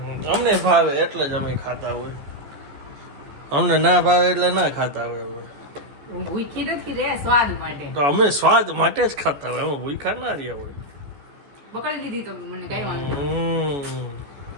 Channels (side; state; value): left; late; 14 ms